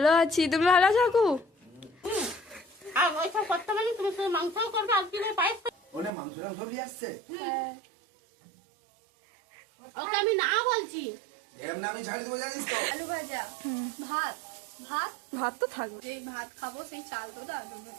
আছি, তুমি ভালো আছো? আমি না বলছি আলু ভাজা, ভাত ভাত ভাত তো থাকবে। এই ভাত খাবো সেই চাল তো দাদু।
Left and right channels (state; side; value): drops out; left; at 6.1 s